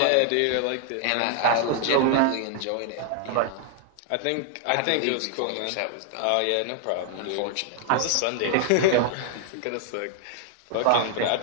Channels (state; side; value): different; both; correlation 0.00